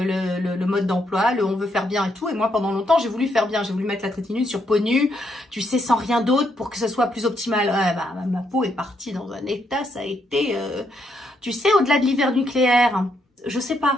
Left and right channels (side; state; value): both; normal; correlation 0.76